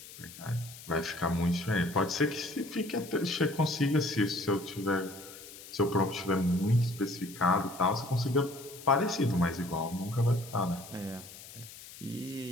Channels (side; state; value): left; noise; hiss, 16 dB below the sound